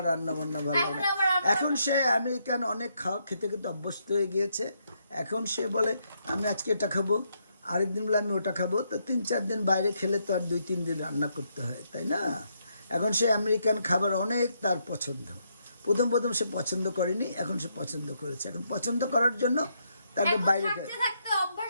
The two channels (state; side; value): inverted; both; correlation -0.77